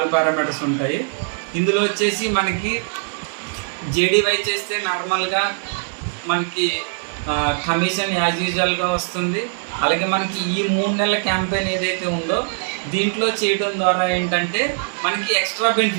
parameters ఉంటాయి. ఇందులో వచ్చేసి మనకి జేడీవై చేస్తే నార్మల్గా మనకి కమిషన్ యాజ్ యూజువల్గా వస్తుంది. అలాగే మనకి ఈ 3 నెలల క్యాంపెయిన్ ఏదైతే ఉందో దీంట్లో చేయడం ద్వారా ఏంటంటే మనకి ఎక్స్ట్రా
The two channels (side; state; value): left; silent; 65 dB below the other